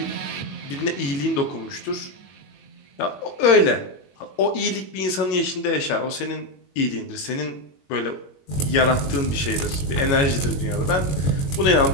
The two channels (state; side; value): late; right; 22 ms